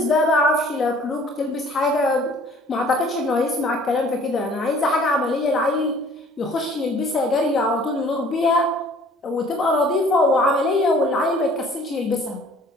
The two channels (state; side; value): normal; both; correlation 0.53